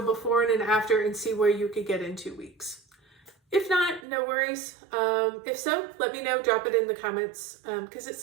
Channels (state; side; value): drops out; left; at 4.0 s